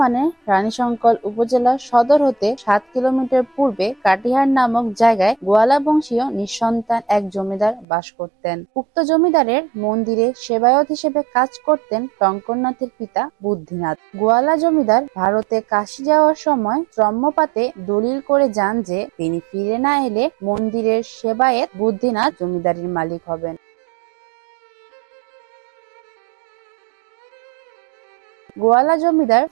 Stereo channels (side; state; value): left; drops out; at 7.9 s